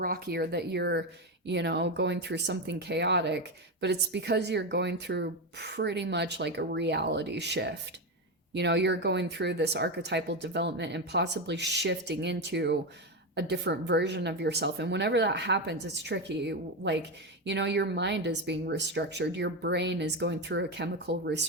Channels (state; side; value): normal; both; correlation 0.12